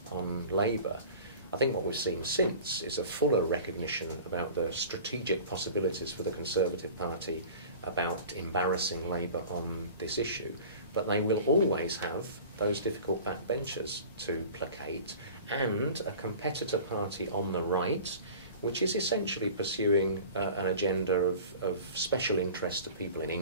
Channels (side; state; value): both; inverted; correlation -0.41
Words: on Labour. I think what we've seen since is a fuller recognition about the strategic possibilities for the Conservative Party about embarrassing Labour on this issue. But they will always have those difficult backbenchers to placate, and a competitor party on the right, which is essentially pursuing an agenda of special interest to people in